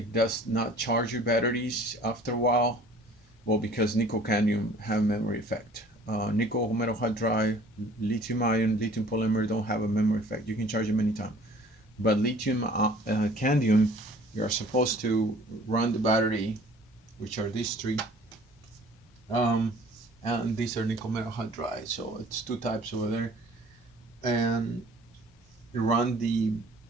does not charge your batteries after a while, well, because nickel cadmium have memory effect. Nickel metal hydride, lithium ion, lithium polymer don't have a memory effect. You can charge them anytime. But lithium cadmium, you are supposed to run the battery, which are these three. And these are nickel metal hydride, so it's two types over there. And run the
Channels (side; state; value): both; normal; correlation 0.51